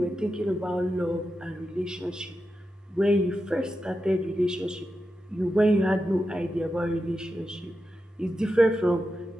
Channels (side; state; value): both; normal; correlation 0.89